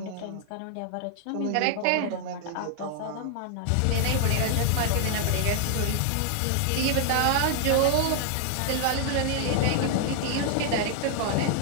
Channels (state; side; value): different; both; correlation 0.00